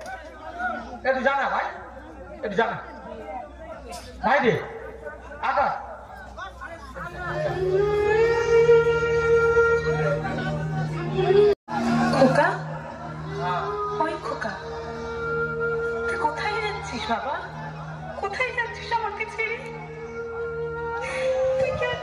একটু জানা ভাই একটু জানা ভাই রে আকাশ খোকা ওই খোকা তুই কোথায় যাচ্ছিস বাবা কোথায় যাচ্ছিস আমাকে ছেড়ে তুই কি আর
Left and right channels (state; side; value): identical; both; correlation 1.00